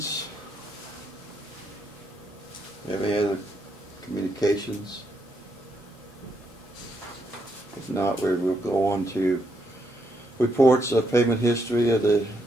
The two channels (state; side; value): normal; both; correlation 0.78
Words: Have any other communications? If not, we'll go on to reports of payment history of the